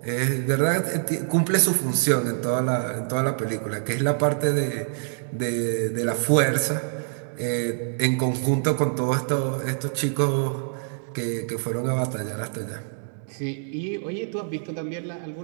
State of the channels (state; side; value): silent; left; digital silence